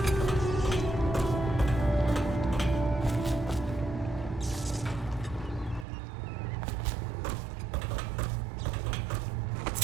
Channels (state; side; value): drops out; left; at 5.9 s